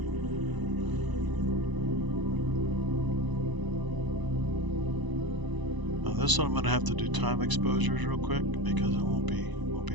Now this one I'm going to have to do time exposures real quick because it won't be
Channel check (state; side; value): late; left; 1.0 ms